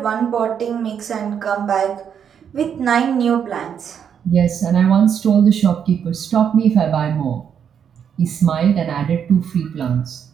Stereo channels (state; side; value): quieter; left; 8.0 dB